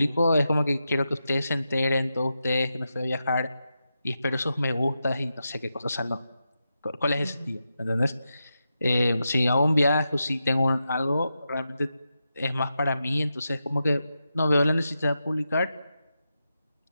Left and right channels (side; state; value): both; inverted; correlation -0.88